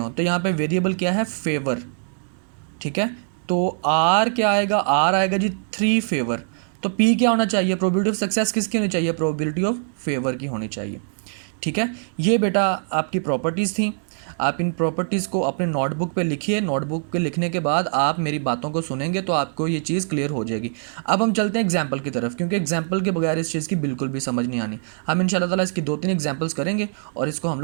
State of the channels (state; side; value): silent; left; digital silence